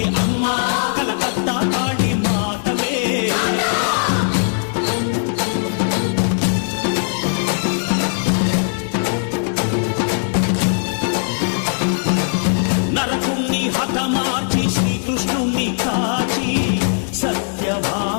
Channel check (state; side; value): silent; right; digital silence